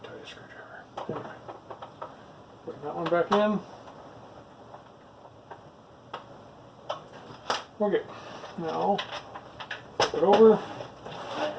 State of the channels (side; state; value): both; identical; correlation 1.00